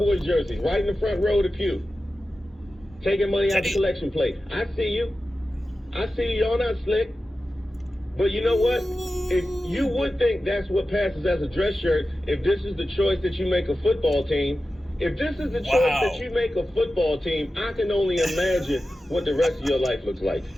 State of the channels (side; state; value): both; normal; correlation 0.93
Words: jerseys, right in the front row of the pew. Taking money out the collection plate. I see you. I see you. Y'all not slick. But you know what? If you would think that's what passes as a dress shirt, if this is the choice that you make a football team, if this is the choice that you make a football team, I can only imagine what the rest of your life looks like.